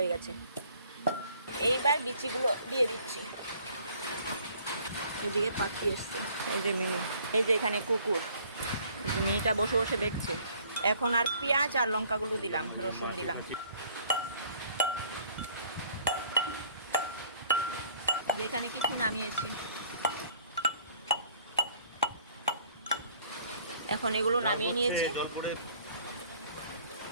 গেছে। এইবার বিচিগুলো দিয়ে দিচ্ছি। এদিকে পাখি এসছে, এই যে মিনি, এই যে এখানে কুকুর, মিনিটা বসে বসে দেখছে। এখন আর পেঁয়াজ আর লঙ্কাগুলো দিলাম, রসুন দিলাম। যেখানে কিছু নামিয়েছি, এখন এগুলো নামিয়ে নিয়েছি।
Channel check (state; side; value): inverted; both; correlation -0.58